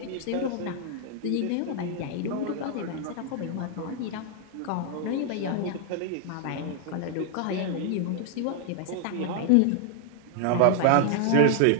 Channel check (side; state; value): both; different; correlation 0.00